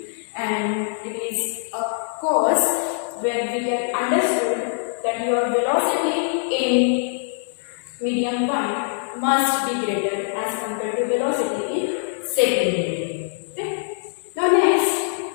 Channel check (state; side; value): silent; right; digital silence